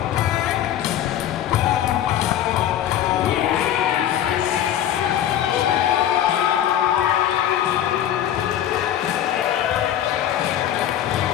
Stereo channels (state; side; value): quieter; right; 11.0 dB